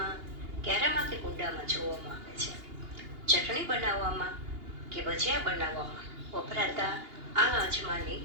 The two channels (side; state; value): left; late; 2.8 ms